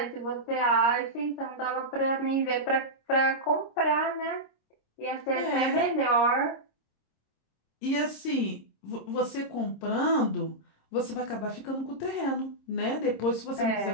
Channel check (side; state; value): right; late; 26 ms